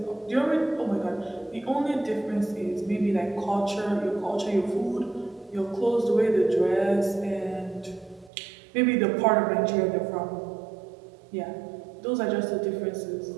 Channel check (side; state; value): left; drops out; at 8.3 s